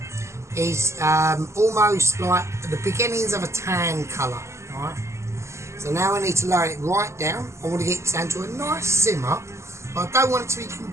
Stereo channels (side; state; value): left; late; 0.13 ms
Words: is almost like the beginnings of a tan colour. Right? So now I need to lower it right down. I want to get it down to a nice simmer, but I don't want it to be